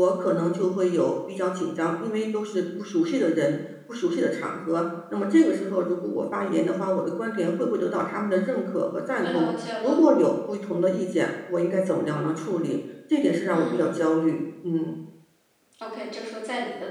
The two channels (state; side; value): identical; both; correlation 1.00